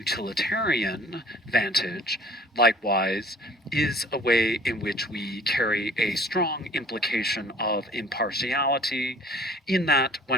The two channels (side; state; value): both; normal; correlation 0.51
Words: vantage, likewise, is a way in which we carry a strong implication of impartiality, in that